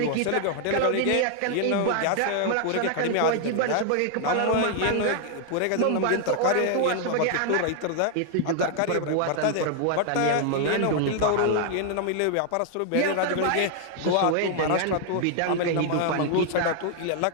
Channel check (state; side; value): different; both; correlation 0.00